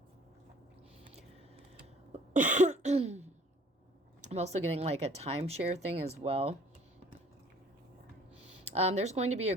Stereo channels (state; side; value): normal; both; correlation 0.54